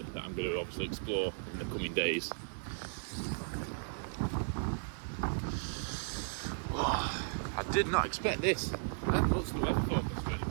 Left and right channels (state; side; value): silent; left; 54 dB below the other